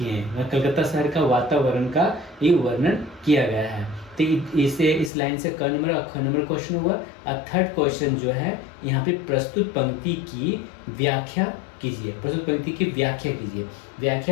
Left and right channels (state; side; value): drops out; right; at 5.1 s